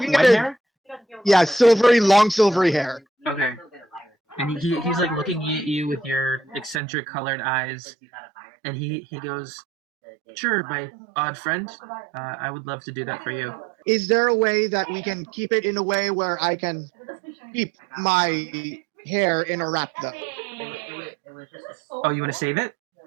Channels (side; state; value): left; drops out; at 6.8 s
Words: white at hair? Yeah, long silvery hair. Okay. And he's like looking at you with your eccentric colored eyes, and he goes, "Sure, my odd friend, I would love to do that for you." Is there a way that we can keep it in a way where I can keep my hair in a wrap though? Oh, you want to save it?